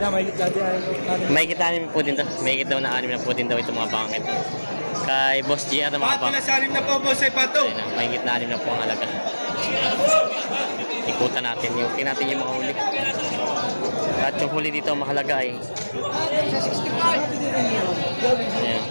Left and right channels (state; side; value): inverted; both; correlation -1.00